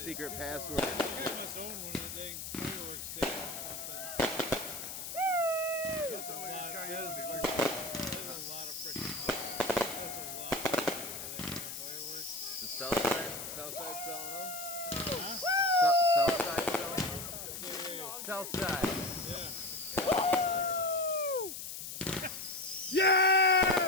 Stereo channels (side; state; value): left; noise; hiss, 7 dB below the sound